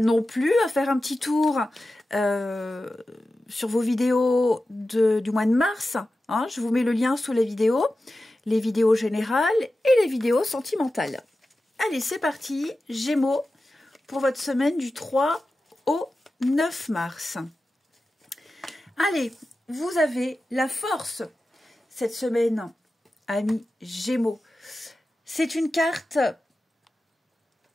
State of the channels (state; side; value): normal; both; correlation 0.93